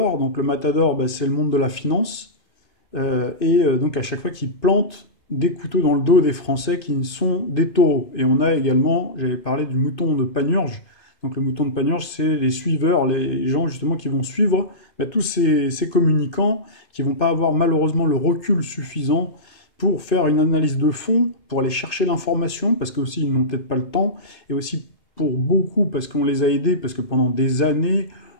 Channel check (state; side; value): late; right; 2.5 ms